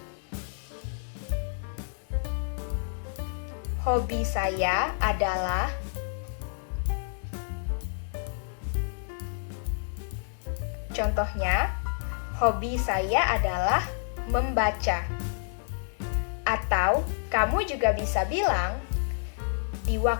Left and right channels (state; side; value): silent; right; digital silence